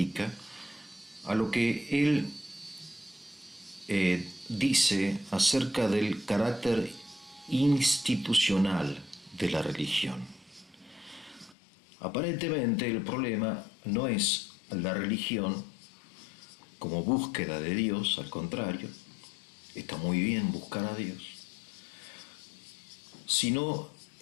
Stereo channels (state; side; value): drops out; right; at 11.6 s